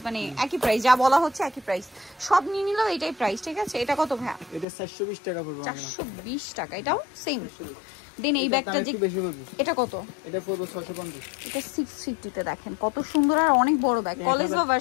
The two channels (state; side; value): drops out; right; at 4.7 s